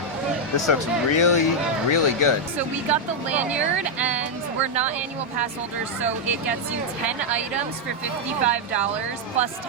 This looks really, really good. So we got the lanyard, and we're not annual pass holders, so it gets you 10 items for $55 plus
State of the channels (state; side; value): normal; both; correlation -0.01